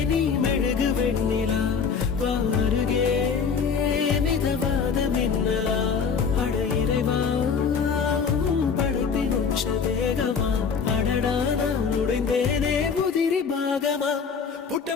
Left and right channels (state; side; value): quieter; right; 6.0 dB